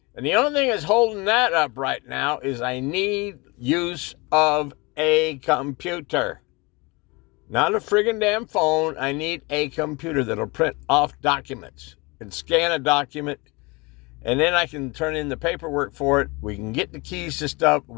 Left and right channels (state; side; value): quieter; right; 26.2 dB